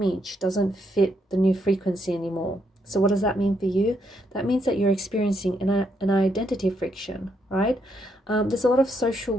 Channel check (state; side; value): normal; both; correlation 0.77